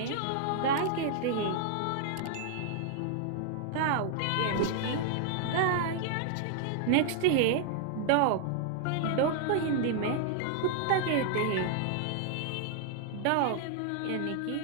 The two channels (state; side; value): different; both; correlation -0.01